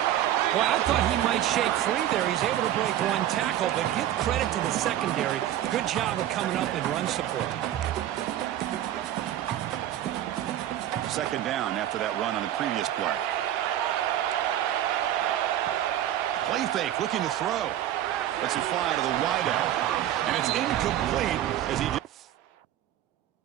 Well, I thought he might shake free there. He's able to break one tackle, but give credit to the secondary. Good job of coming up and run support. Second down after that run on the previous play. Play fake, looking to throw. Lets it fly to the wideout. And it's incomplete as he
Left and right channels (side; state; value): left; quieter; 12.1 dB